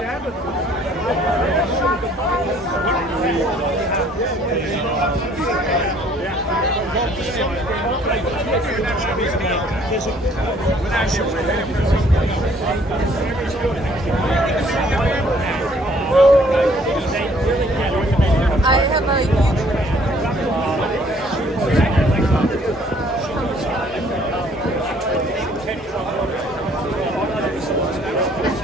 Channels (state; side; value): normal; both; correlation 0.60